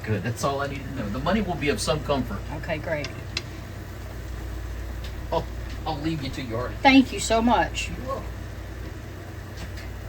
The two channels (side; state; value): both; identical; correlation 1.00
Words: That's all I need to know. The money will be of some comfort. Okay, great. I'll leave you to your art. Thank you so much. You're welcome.